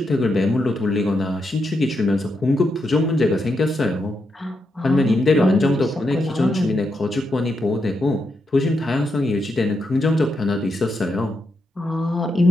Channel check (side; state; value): both; normal; correlation 0.83